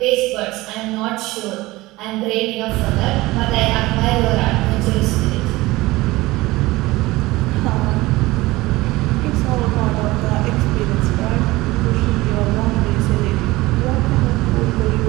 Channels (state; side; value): quieter; left; 19.7 dB